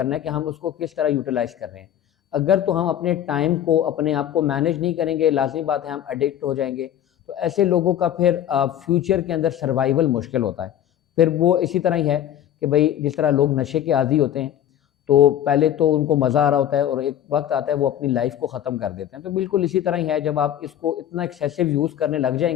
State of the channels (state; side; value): quieter; right; 10.9 dB